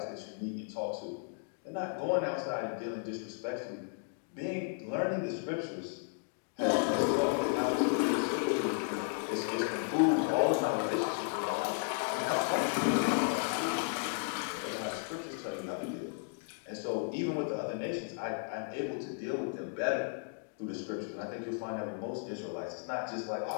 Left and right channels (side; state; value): right; silent; 55 dB below the other